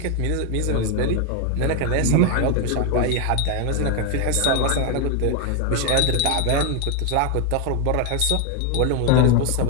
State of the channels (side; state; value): both; different; correlation 0.01